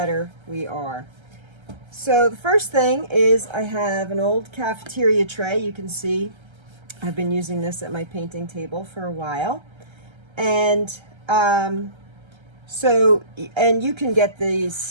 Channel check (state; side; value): late; left; 1.3 ms